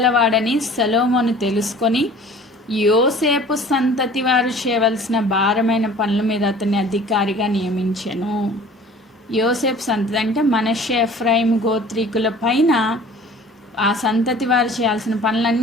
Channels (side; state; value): both; normal; correlation 0.47